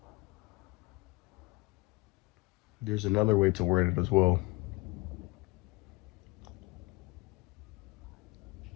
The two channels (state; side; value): quieter; right; 23.2 dB